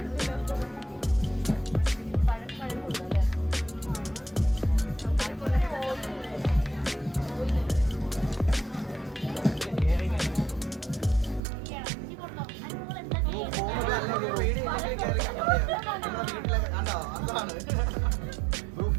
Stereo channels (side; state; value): left; drops out; at 11.4 s